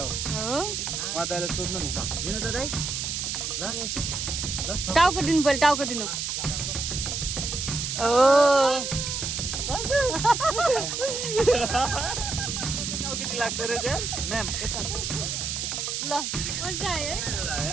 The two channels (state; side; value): noise; right; hiss, 3 dB below the sound